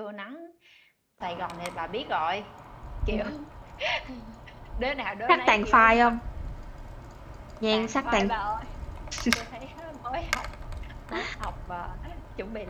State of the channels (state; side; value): identical; both; correlation 1.00